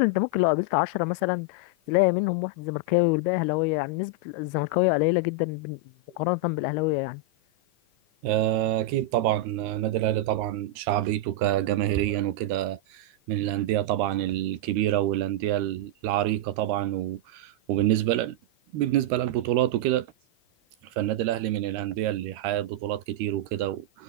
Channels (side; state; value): left; late; 13 ms